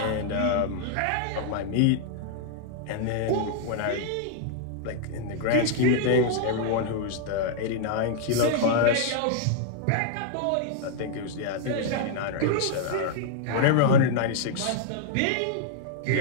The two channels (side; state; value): both; different; correlation -0.01